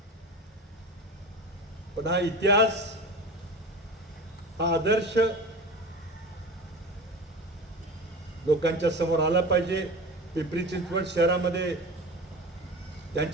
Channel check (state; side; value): normal; both; correlation 0.32